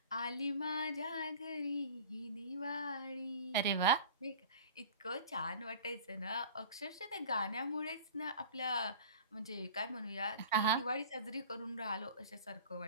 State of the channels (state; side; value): inverted; both; correlation -0.41